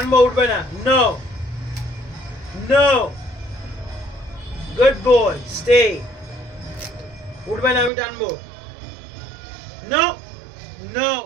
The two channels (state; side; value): drops out; left; at 7.9 s